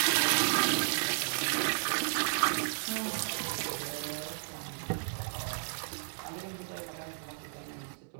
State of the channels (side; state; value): left; silent; 56 dB below the other